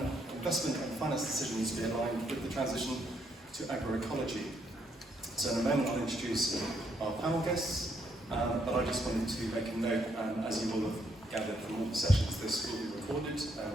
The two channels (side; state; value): both; normal; correlation 0.74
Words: Investment and Finance Decisions be aligned with the transition to agroecology? So in a moment I'll introduce our panel guests, but I just wanted to make a note, as you will have gathered from all the sessions, this will be recorded.